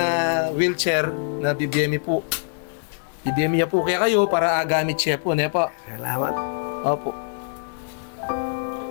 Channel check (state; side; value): silent; right; digital silence